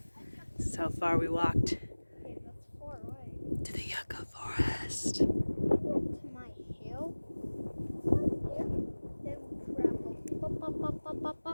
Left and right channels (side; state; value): both; inverted; correlation -1.00